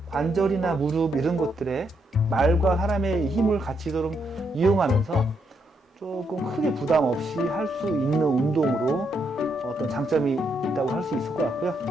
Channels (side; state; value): both; normal; correlation 0.78